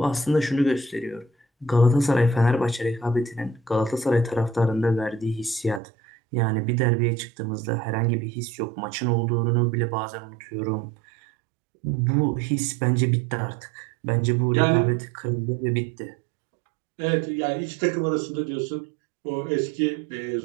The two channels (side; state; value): left; drops out; at 5.8 s